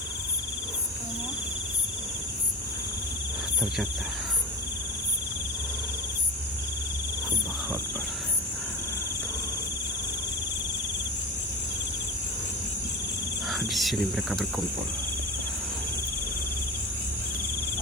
Ternyata Allahu Akbar. Di sini mereka berkumpul.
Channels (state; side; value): normal; both; correlation 0.25